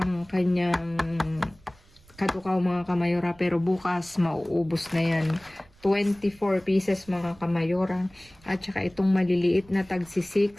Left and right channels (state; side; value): noise; right; rumble, 27 dB below the sound